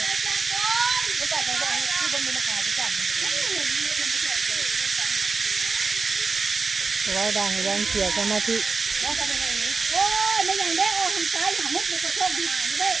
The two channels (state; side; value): quieter; left; 4.5 dB